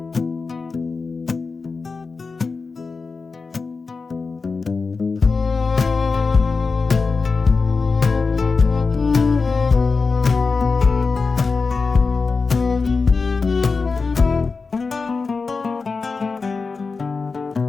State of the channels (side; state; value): right; quieter; 4.4 dB